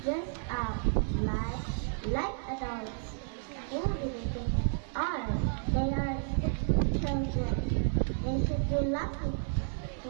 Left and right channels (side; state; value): left; silent; 57 dB below the other